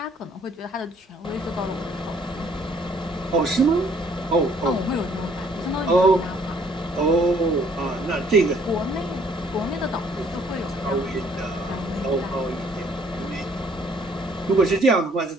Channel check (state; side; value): normal; both; correlation 0.62